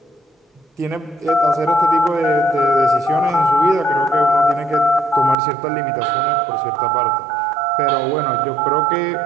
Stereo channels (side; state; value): left; drops out; at 5.4 s